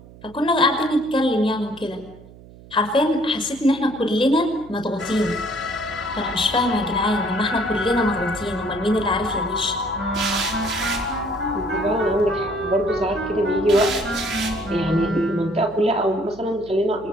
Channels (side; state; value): right; noise; hum, 20 dB below the sound